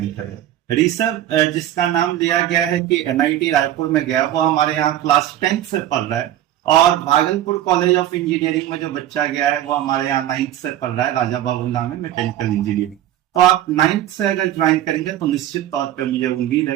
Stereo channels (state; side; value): quieter; left; 12.6 dB